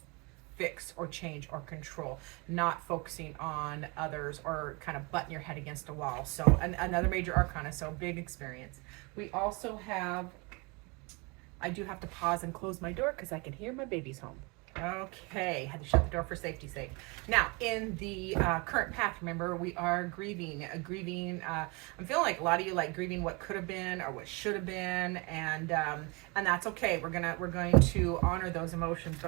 fix or change or control, not focusing on others or kind of butting your head against a wall. So another major arcana, so big experience. We also have, I do have to pause and close my door because I can hear my babies home. Okay, had to shut the door for safety's sake. Now, in the current path, remember, we are grieving. I'm feeling like a lot of you like grieving what could have been or what should have been, and that's okay. We're going to honor those emotions,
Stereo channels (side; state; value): left; quieter; 28.8 dB